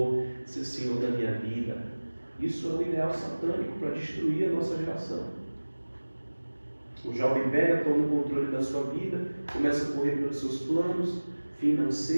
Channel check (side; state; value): both; inverted; correlation -1.00